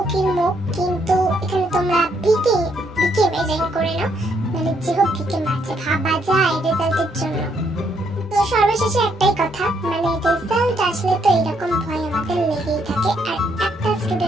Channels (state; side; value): normal; both; correlation 0.73